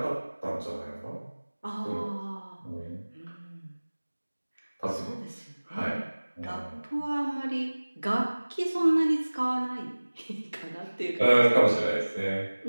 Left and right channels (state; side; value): inverted; both; correlation -1.00